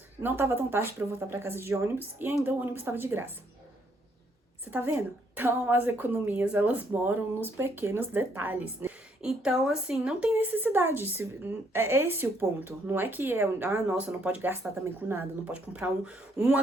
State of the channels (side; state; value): both; normal; correlation 0.70